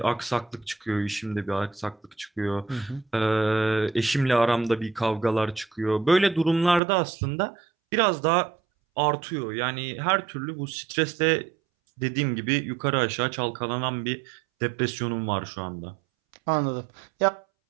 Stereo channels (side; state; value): left; drops out; at 6.8 s